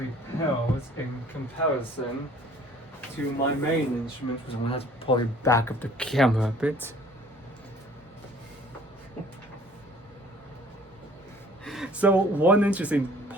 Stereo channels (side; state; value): both; normal; correlation 0.53